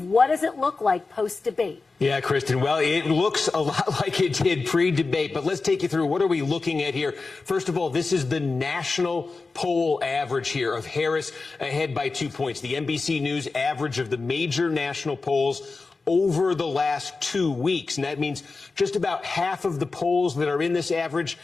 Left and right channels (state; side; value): quieter; right; 4.0 dB